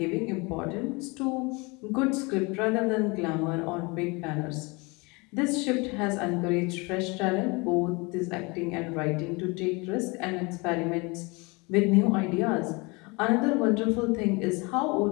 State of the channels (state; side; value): quieter; right; 27.3 dB